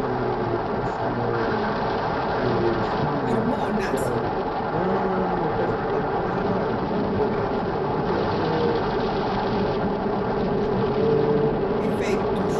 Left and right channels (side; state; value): both; identical; correlation 1.00